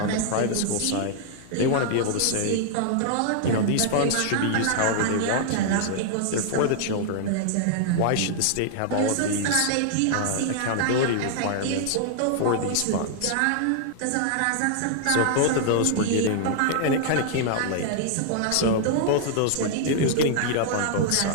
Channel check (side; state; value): both; different; correlation -0.01